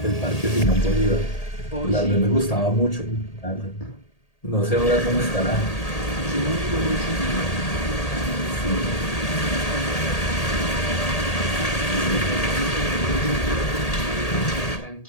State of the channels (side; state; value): right; late; 1.8 ms